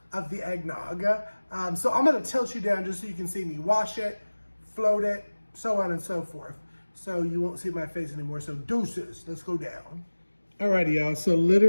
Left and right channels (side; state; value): both; inverted; correlation -1.00